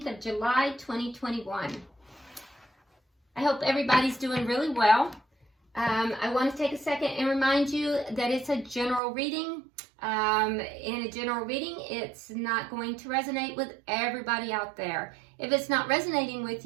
of July 2021. I hope everybody's doing really well. I want to take a second and remind you that it's a general reading. In a general reading, it's not going to resonate with everybody out there. If it's not resonating with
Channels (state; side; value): drops out; left; at 9.0 s